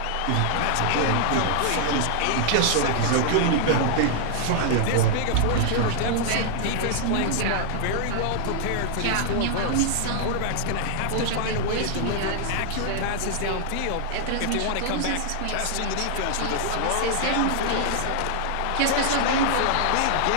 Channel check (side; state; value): both; different; correlation -0.01